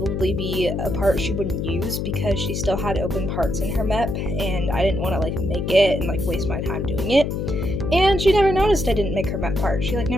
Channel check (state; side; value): noise; left; hum, 2 dB below the sound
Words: be a part she wouldn't use because she still had open parts in her map, and I didn't want to make it and waste my time doing it. And she never noticed I didn't make her map part. She